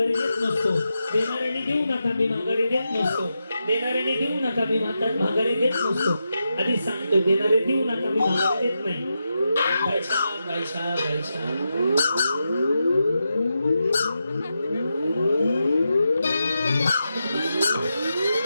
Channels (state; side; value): inverted; both; correlation -0.88